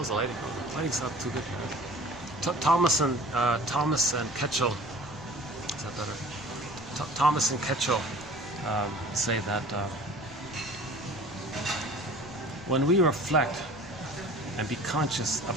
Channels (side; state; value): left; noise; rumble, 19 dB below the sound